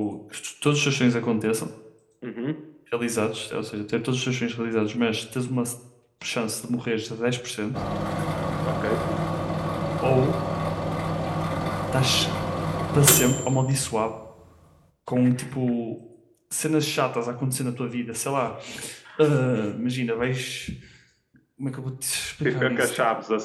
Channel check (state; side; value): identical; both; correlation 1.00